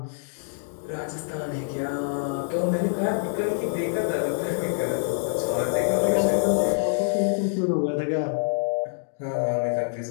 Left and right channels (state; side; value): silent; right; digital silence